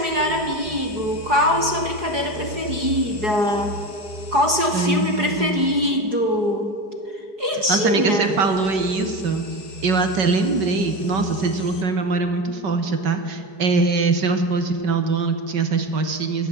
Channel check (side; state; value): left; late; 4.8 ms